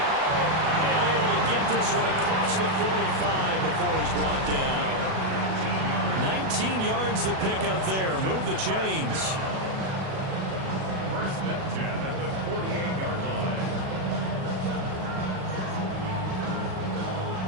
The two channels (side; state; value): left; late; 37 ms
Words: And able to get this one across the 45 before he's brought down. 19 yards the pickup there. Move the chains. 1st and 10 at the 48-yard line.